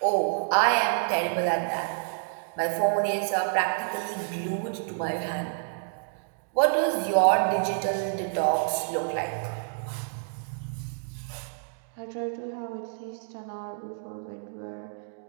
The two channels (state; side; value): silent; left; digital silence